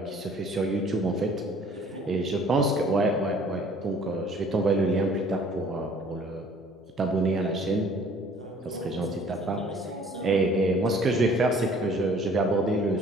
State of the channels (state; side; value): normal; both; correlation 0.54